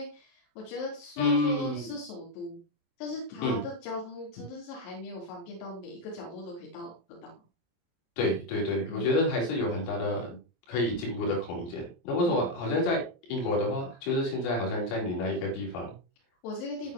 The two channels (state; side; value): late; right; 23 ms